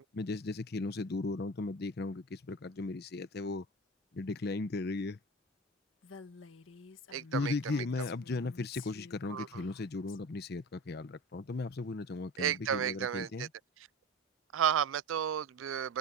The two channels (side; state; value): both; normal; correlation 0.32